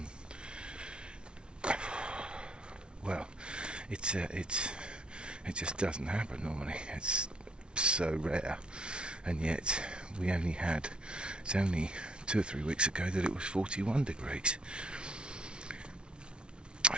well, it just doesn't happen normally. It's so rare, and yet it's only 2 or 3 weeks ago that it was 41 degrees.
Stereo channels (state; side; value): late; left; 0.056 ms